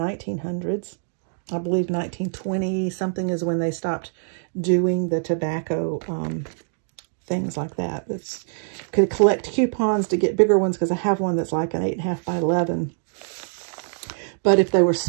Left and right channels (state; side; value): silent; left; digital silence